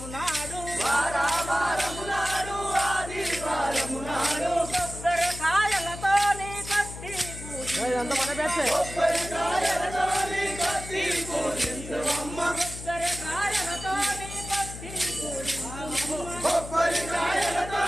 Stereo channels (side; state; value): left; noise; hum, 11 dB below the sound